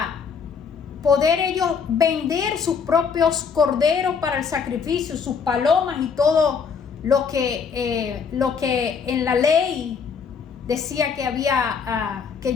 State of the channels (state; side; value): quieter; right; 6.1 dB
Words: poder ellos vender sus propios corderos para el sacrificio, sus palomas y todo lo que en la ley decía que había que